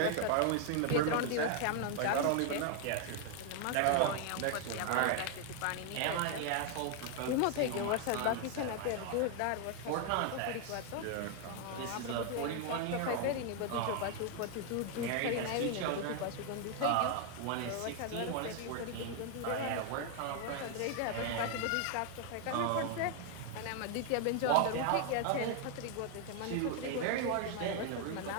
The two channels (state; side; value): different; both; correlation 0.00